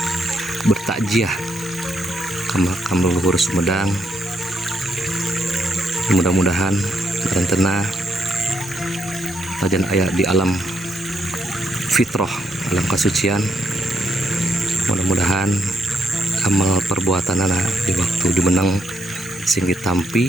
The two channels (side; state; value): both; normal; correlation 0.77